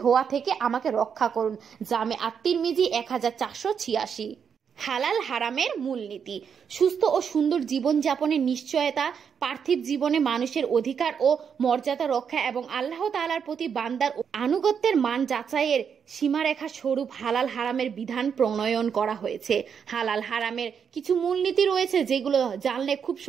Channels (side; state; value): left; quieter; 7.1 dB